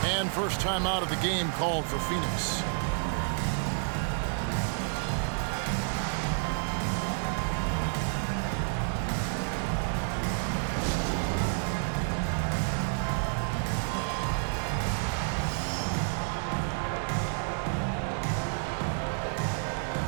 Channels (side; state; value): left; silent; 58 dB below the other